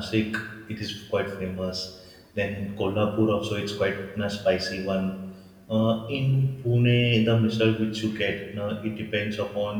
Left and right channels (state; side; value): identical; both; correlation 1.00